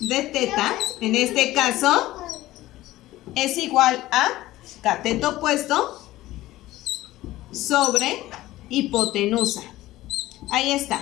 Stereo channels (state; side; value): quieter; right; 16.4 dB